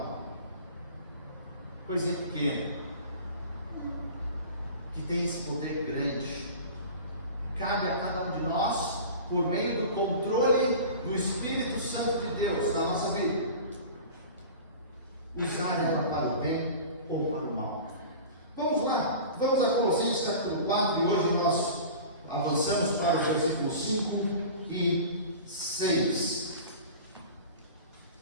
Coisinha pequena que tem esse poder grande. Cabe a cada um de nós, por meio do controle do Espírito Santo de Deus na nossa vida, usar ela para o bem ou para o mal. Vamos lá, vamos a Colossenses capítulo 4, e hoje nós avançamos para os versículos 5 e 6.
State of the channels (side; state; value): both; inverted; correlation -0.37